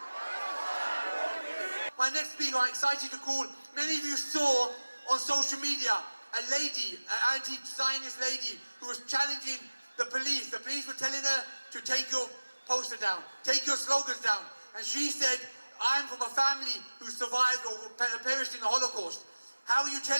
My next speaker, I'm excited to call. Many of you saw on social media a lady, an anti-Zionist lady, who was challenging the police. The police were telling her to take your poster down, take your slogans down. And she said, I'm from a family who survived or perished in the Holocaust. How are you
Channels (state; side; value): inverted; both; correlation -1.00